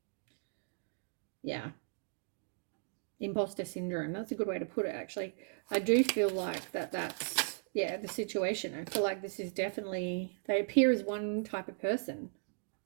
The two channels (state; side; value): silent; left; digital silence